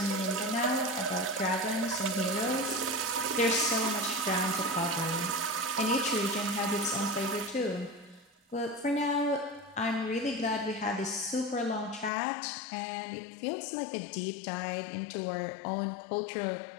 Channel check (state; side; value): drops out; right; at 12.1 s